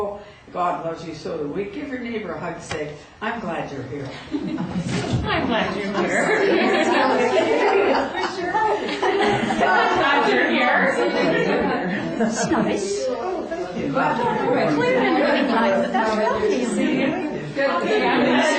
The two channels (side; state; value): both; identical; correlation 1.00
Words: God loves you, so do we. Give your neighbor a hug. Say, I'm glad you're here. I'm glad you're here. I'm glad you're here. That's nice. Oh, thank you. Clear and really nice, but that's really easy. Okay, I'm